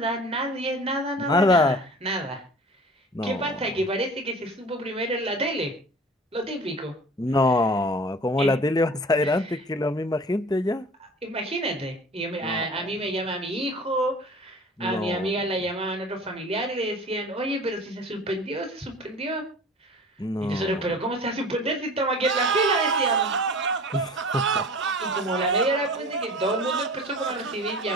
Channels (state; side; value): normal; both; correlation 0.41